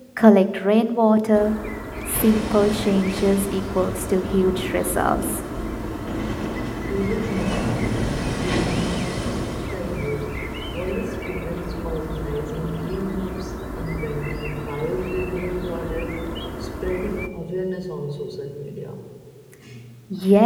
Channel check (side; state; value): both; identical; correlation 1.00